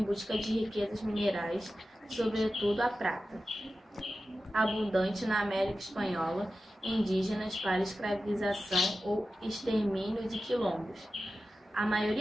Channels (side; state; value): both; normal; correlation 0.93